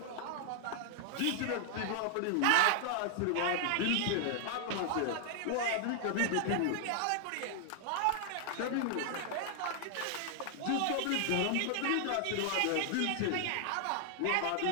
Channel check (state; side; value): different; both; correlation 0.00